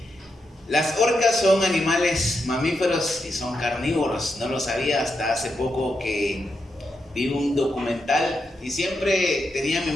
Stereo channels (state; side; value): normal; both; correlation 0.84